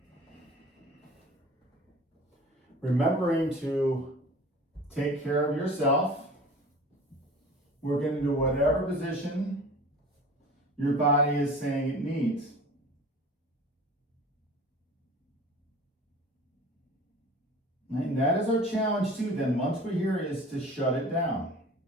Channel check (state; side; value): normal; both; correlation 0.42